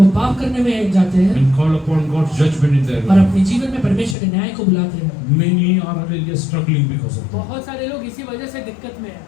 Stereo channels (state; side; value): drops out; right; at 4.2 s